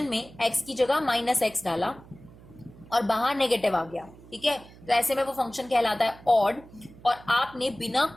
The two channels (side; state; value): right; noise; hum, 21 dB below the sound